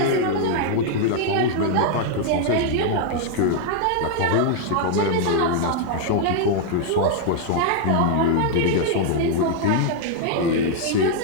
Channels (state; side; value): different; both; correlation 0.00